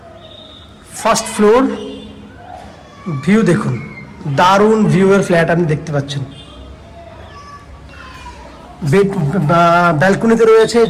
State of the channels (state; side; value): identical; both; correlation 1.00